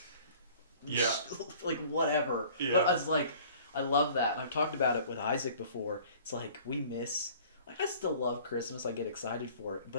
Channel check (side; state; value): both; inverted; correlation -0.50